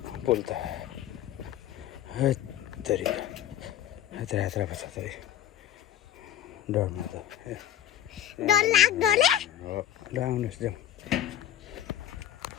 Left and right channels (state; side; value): quieter; right; 11.5 dB